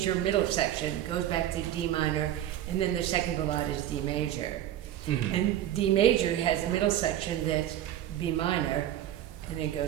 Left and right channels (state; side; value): quieter; left; 12.2 dB